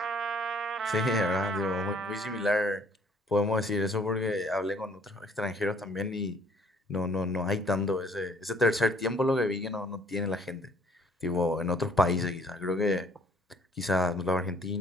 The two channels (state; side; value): normal; both; correlation 0.59